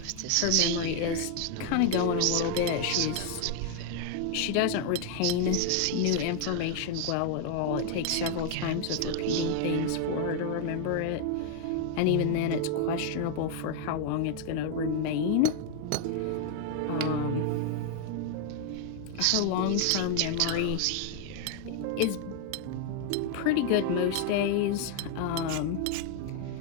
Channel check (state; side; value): different; both; correlation 0.00